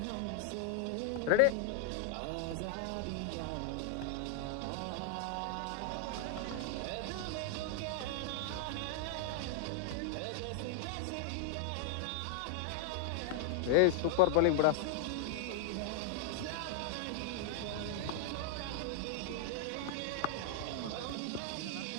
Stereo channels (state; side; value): different; both; correlation -0.01